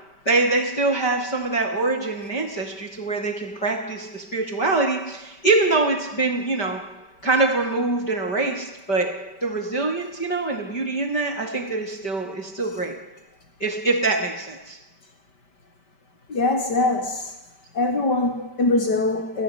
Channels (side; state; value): right; late; 5.1 ms